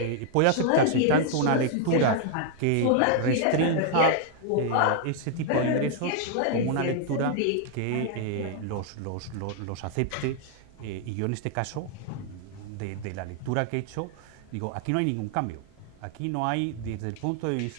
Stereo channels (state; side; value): different; both; correlation 0.00